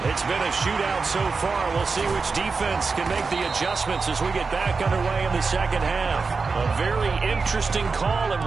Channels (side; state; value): left; quieter; 4.6 dB